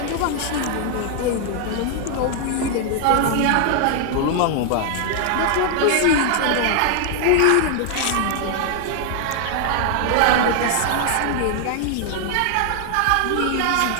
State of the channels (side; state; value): both; different; correlation 0.00